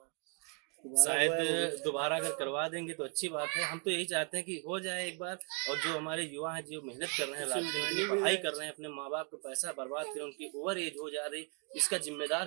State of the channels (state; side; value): quieter; left; 35.9 dB